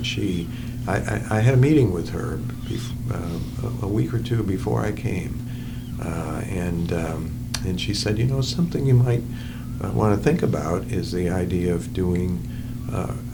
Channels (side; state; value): both; identical; correlation 1.00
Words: I had a meeting with her a week or two before I came, and she said, something you might want to think about is the idea of doing